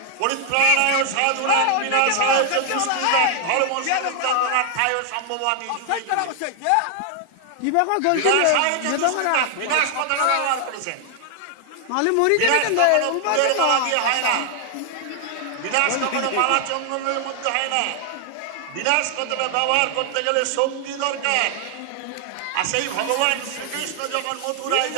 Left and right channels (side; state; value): both; different; correlation 0.00